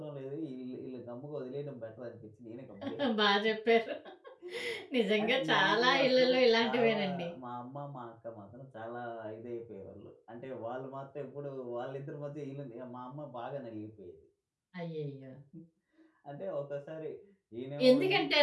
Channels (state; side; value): identical; both; correlation 1.00